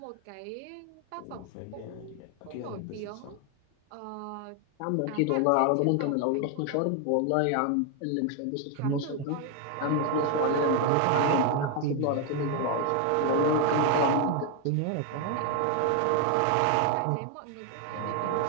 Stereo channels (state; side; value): different; both; correlation 0.01